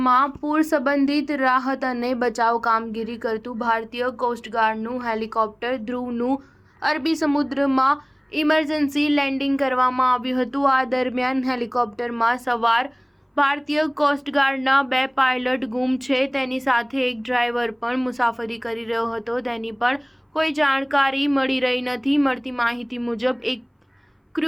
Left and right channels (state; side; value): identical; both; correlation 1.00